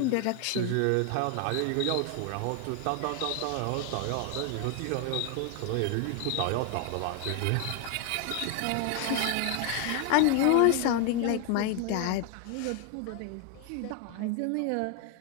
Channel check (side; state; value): both; different; correlation 0.00